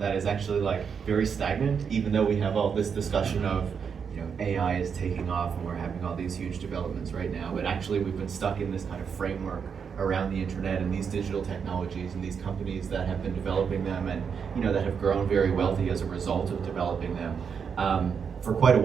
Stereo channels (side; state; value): left; quieter; 6.6 dB